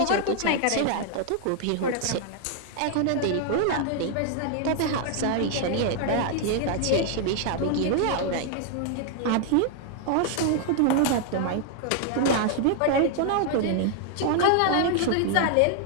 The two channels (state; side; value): different; both; correlation 0.00